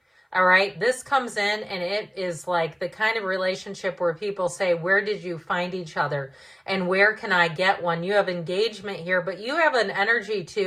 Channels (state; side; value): identical; both; correlation 1.00